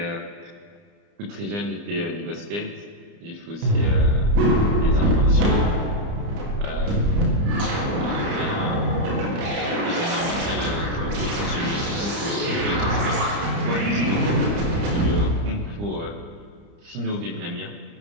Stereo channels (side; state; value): left; late; 30 ms